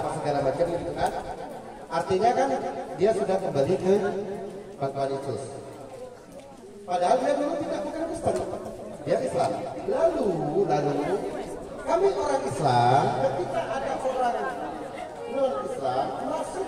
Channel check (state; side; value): identical; both; correlation 1.00